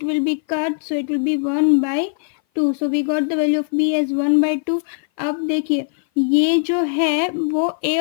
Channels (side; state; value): right; silent; 57 dB below the other